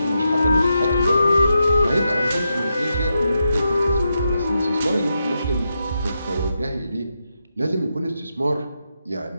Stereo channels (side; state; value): both; inverted; correlation -0.85